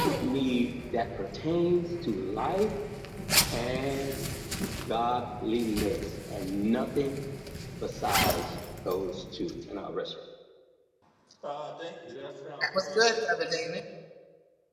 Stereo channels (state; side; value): identical; both; correlation 1.00